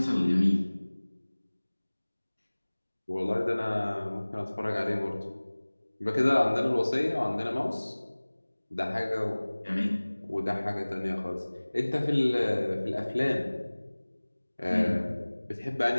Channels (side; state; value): both; inverted; correlation -1.00